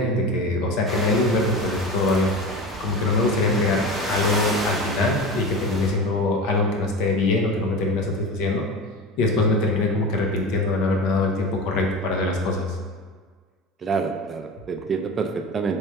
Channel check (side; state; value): both; normal; correlation 0.29